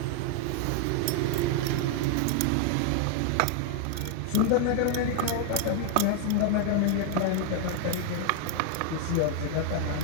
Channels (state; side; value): different; both; correlation 0.00